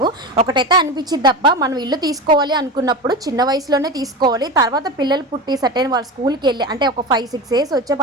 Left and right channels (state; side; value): normal; both; correlation 0.25